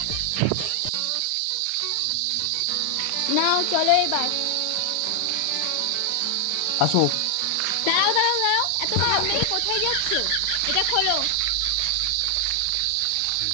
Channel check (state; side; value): different; both; correlation 0.00